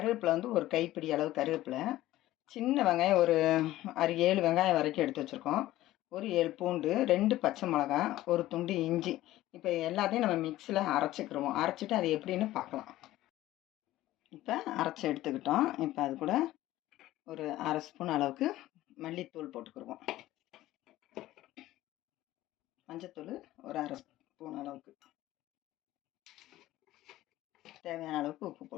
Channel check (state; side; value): quieter; right; 15.5 dB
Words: வந்து ஒரு கைப்பிடி அளவு கருவேப்பிலை, சின்ன வெங்காயம் ஒரு 6-7 வெங்காயம் வரைக்கும் எடுத்து வச்சுருக்கோம், ஒரு 7 பூண்டு, 2 பச்சை மிளகா, ஒரு துண்டு இஞ்சி. இப்போ எல்லாத்தையும் நம்ம மிக்ஸியில் அரைச்சிக்கிடுவோம். அரைச்சிட்டு அது எப்படின்னு பார்க்கலாம். இப்போ அரைச்சி எடுத்துக்கிட்டோம். இப்போ அது கூட ஒரு 1/2 ஸ்பூன் அளவுக்கு மல்லித்தூள் போட்டுக்கிடுவோம். மஞ்சத்தூள் ஒரு 1/2 ஸ்பூன் அளவுக்கு, தேவையான அளவுக்கு உப்பு